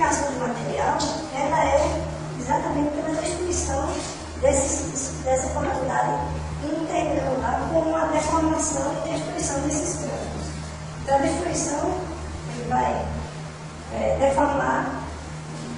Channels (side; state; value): both; identical; correlation 1.00